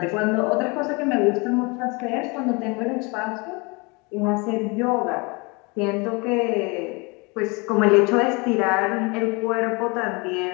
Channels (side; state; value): right; quieter; 28.4 dB